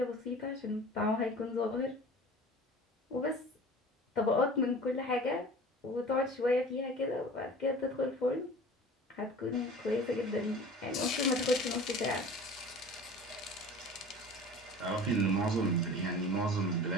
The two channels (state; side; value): normal; both; correlation 0.41